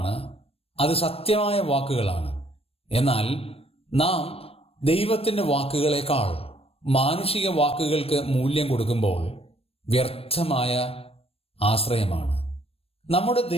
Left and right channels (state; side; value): late; right; 0.28 ms